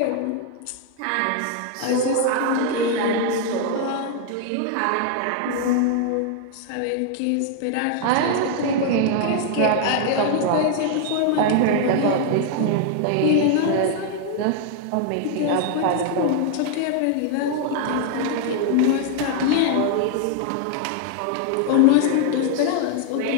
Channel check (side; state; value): both; different; correlation 0.00